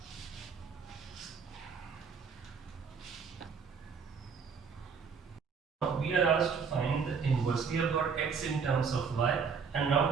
We are asked to find the inverse. We have got x in terms of y, and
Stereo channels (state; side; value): quieter; left; 5.9 dB